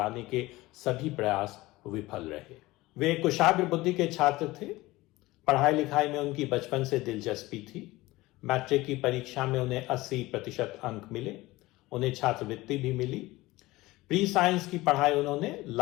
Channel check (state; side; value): quieter; right; 19.3 dB